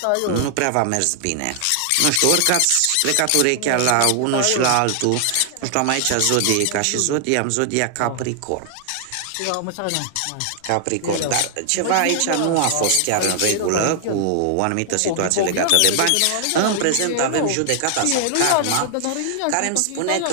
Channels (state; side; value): different; both; correlation 0.00